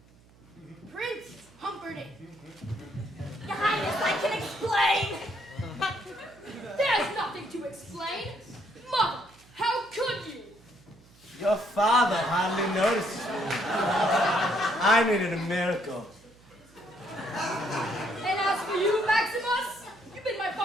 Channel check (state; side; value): noise; right; hum, 27 dB below the sound